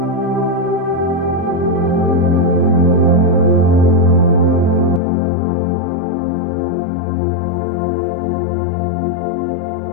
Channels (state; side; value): drops out; right; at 5.0 s